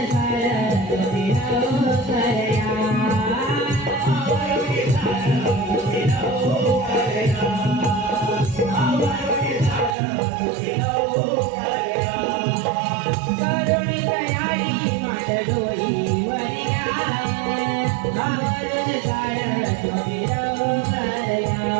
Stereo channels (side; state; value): left; drops out; at 10.0 s